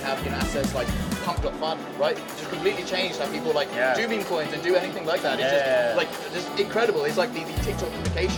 have assets like pump.fun, right? Just completely changed how people do meme coins and do anything like that. It's just incredible. It's like the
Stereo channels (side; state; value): both; identical; correlation 1.00